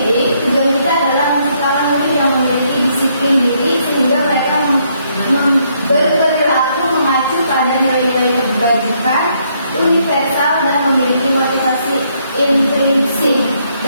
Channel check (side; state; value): both; inverted; correlation -0.72